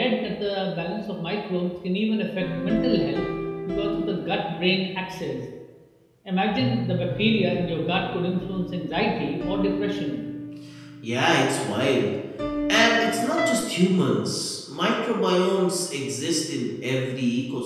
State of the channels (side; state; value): both; identical; correlation 1.00